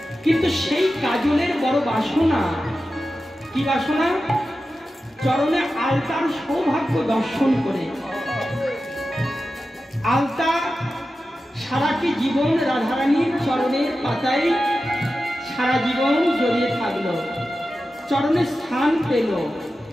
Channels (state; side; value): normal; both; correlation 0.93